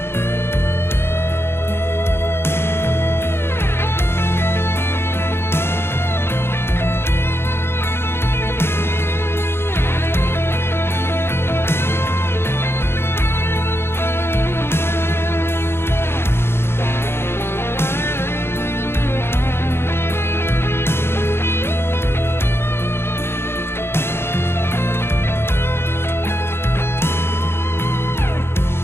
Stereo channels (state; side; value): late; right; 0.12 ms